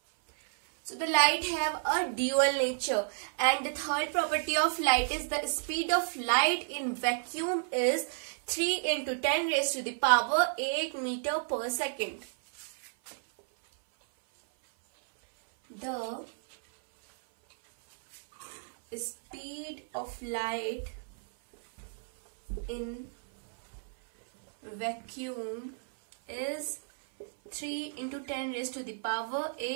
So the light have a dual nature. And the third property of light is the speed of light in vacuum is 3 into 10 raised to the power 8 meter per second. The speed of light in vacuum is 3 into 10 raised to the power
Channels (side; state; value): left; silent; 57 dB below the other